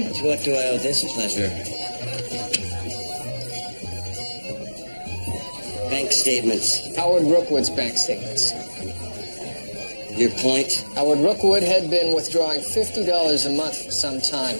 To what do I owe this pleasure? Bank statements. Howard Rookwood's bank statements. Your point? Howard Rookwood had been withdrawing $50 a month for some time.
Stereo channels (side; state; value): both; inverted; correlation -1.00